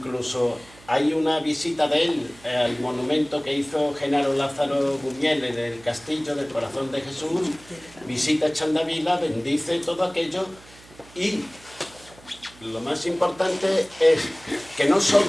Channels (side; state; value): right; noise; hum, 24 dB below the sound